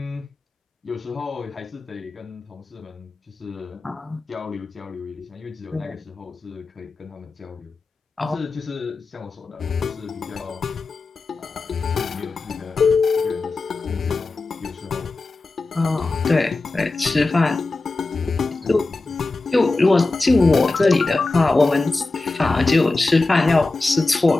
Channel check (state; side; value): quieter; right; 3.4 dB